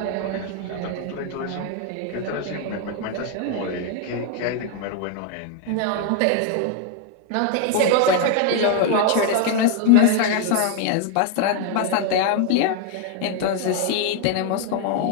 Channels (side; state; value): both; different; correlation 0.01